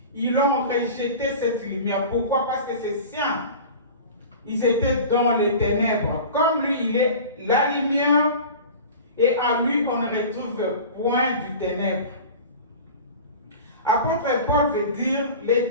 Ils ont rejeté cette lumière. Pourquoi? Parce que ses siens, ils étaient dans les ténèbres. Comme lui, il est la lumière et en lui, on ne retrouve point du ténèbre. Apôtre Paul veut dire, les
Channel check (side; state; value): both; inverted; correlation -0.36